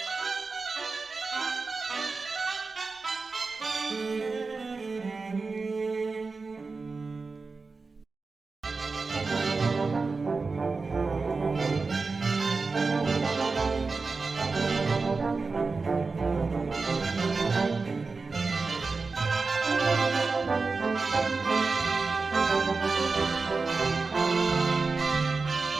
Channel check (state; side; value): quieter; left; 4.1 dB